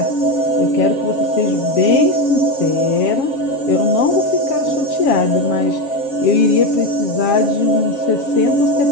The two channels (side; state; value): right; late; 7.4 ms